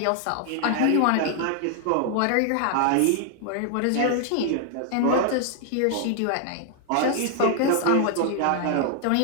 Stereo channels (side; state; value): both; different; correlation 0.00